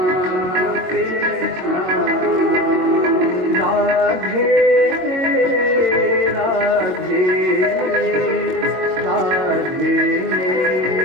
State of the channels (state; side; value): late; left; 22 ms